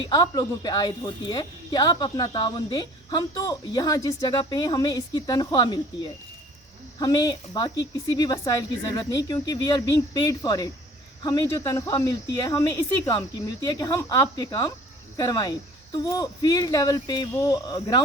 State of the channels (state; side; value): normal; both; correlation 0.50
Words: आप लोगों पे आयद होती है कि आप अपना ताउन दें। हम तो यहाँ जिस जगह पे हैं हमें इसकी तनख्वाह मिलती है, हमें बाकी किसी भी वसाइल की ज़रूरत नहीं, क्योंकि we are being paid for it. हमें जो तनख्वाह मिलती है हमें इसी काम की मिलती है कि हम आपके काम करवाएं। तो वो फील्ड लेवल पे, वो